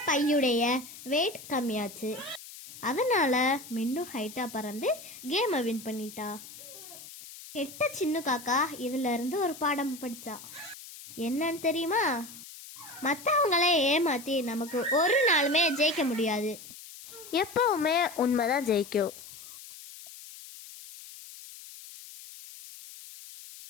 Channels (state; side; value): noise; left; hiss, 16 dB below the sound